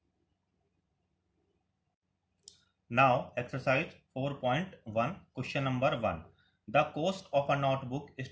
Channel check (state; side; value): identical; both; correlation 1.00